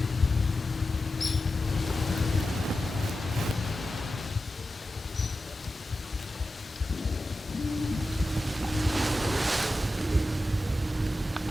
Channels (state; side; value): normal; both; correlation 0.92